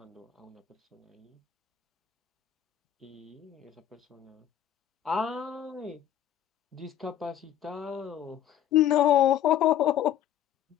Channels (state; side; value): quieter; right; 10.8 dB